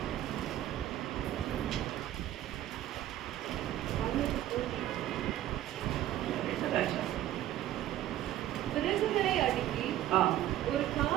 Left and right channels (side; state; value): left; quieter; 13.1 dB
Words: விறகுகளை அடுக்கி ஒரு